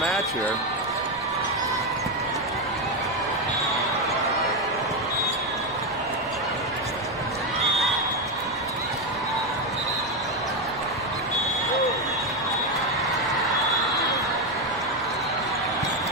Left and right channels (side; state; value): right; noise; rumble, 22 dB below the sound